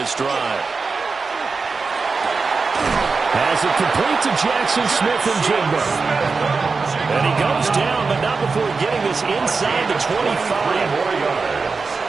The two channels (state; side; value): quieter; left; 4.5 dB